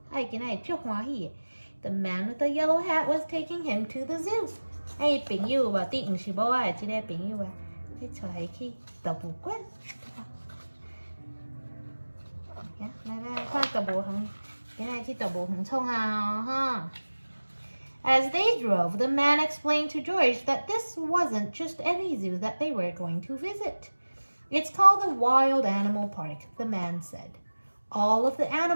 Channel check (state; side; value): inverted; both; correlation -1.00